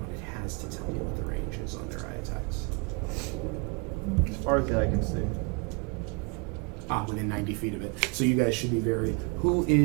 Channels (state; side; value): quieter; left; 31.4 dB